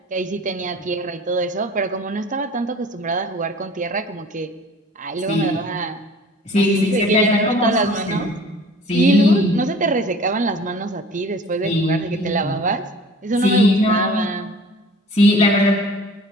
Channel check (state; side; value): normal; both; correlation 0.46